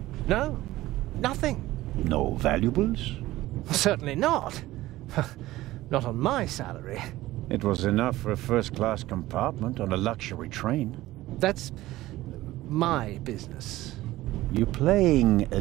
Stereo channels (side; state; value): left; quieter; 16.7 dB